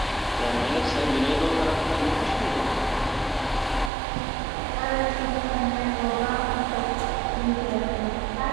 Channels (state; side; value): drops out; left; at 3.9 s